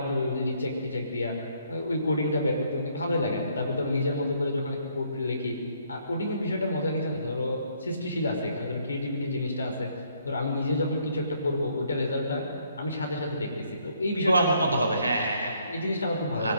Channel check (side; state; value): both; inverted; correlation -0.68